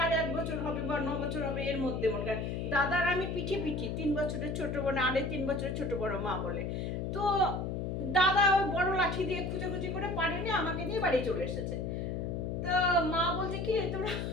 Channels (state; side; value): noise; left; hum, 2 dB below the sound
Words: বছর হবে, বা 9 বছর হবে, এর মধ্যে মনে হয়। দাদার আমি পিঠি 3 বছরের ছোট বোন, 3.5 বছরের ছোট বড় মা বলে। তো দাদা ওই বড় লাঠি দিয়ে খুঁজে করে পারেনি, আমাকে নিয়ে বাড়ি চলে এসেছে। তো মা বলছে, কি তোমরা